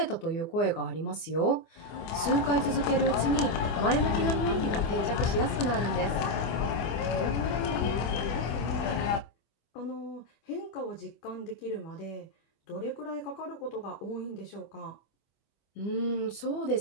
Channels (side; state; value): right; late; 24 ms